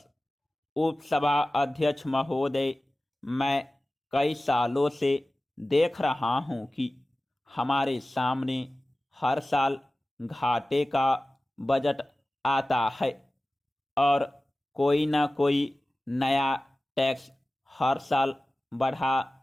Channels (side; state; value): both; normal; correlation 0.96